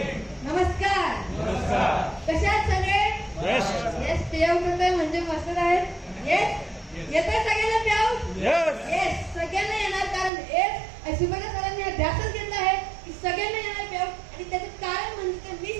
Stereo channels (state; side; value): drops out; left; at 10.3 s